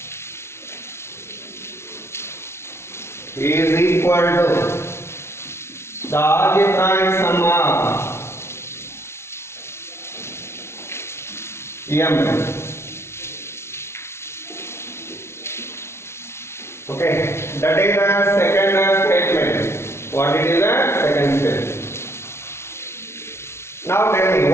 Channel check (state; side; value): late; right; 0.12 ms